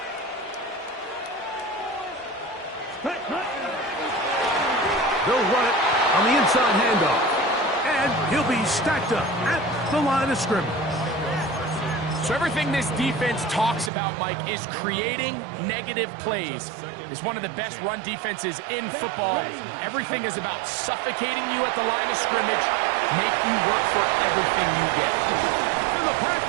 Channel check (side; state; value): left; drops out; at 13.9 s